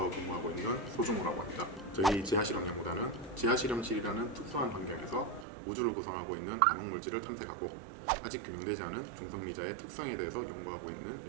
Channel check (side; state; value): left; drops out; at 5.5 s